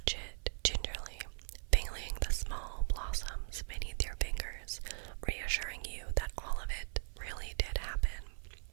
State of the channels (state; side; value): silent; left; 52 dB below the other